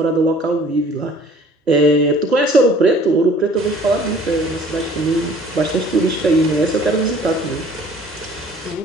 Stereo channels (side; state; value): both; normal; correlation 0.53